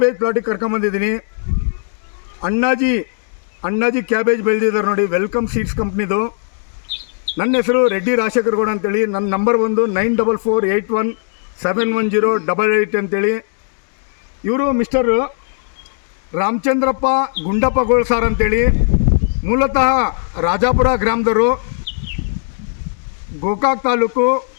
ಪ್ಲಾಟಿಗೆ ಕರ್ಕೊಂಬಂದಿದ್ದೀನಿ. ಅಣ್ಣಾಜಿ ಕ್ಯಾಬೇಜ್ ಬೆಳೆದಿದ್ದಾರೆ ನೋಡಿ, ವೆಲ್ಕಮ್ ಸೀಡ್ಸ್ ಕಂಪ್ನಿದು. ನನ್ನ ಹೆಸರು ರೆಡ್ಡಿ ರಾಜಶೇಖರಗೌಡ ಅಂತೇಳಿ. ನನ್ನ ನಂಬರ್ 9448171088 ಅಂತೇಳಿ. ಇವರು ಮಿಸ್ಟರ್ ರಾಮಚಂದ್ರಪ್ಪ ಗುಂಡಪ್ಪ ಗೋಳ್ಸಾರ್ ಅಂತೇಳಿ, ಮೂಲತಃ ರಾಜಾಪುರ ಗ್ರಾಮದವರು, ಗೋಕಾಕ್ ತಾಲೂಕು,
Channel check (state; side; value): silent; right; digital silence